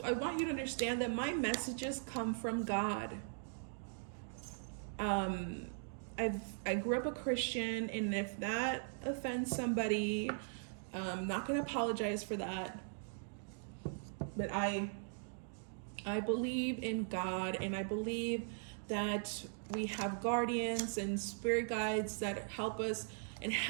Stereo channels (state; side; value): silent; left; digital silence